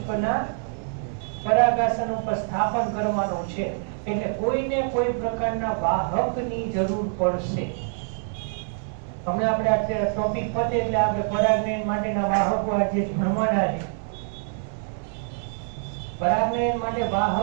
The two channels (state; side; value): silent; left; digital silence